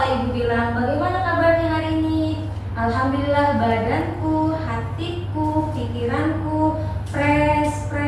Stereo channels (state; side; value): identical; both; correlation 1.00